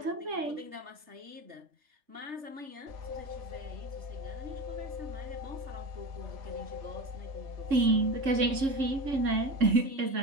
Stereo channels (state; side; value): late; left; 3.7 ms